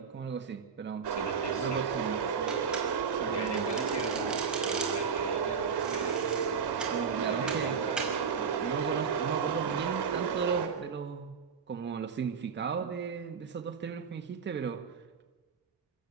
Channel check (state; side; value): quieter; left; 6.1 dB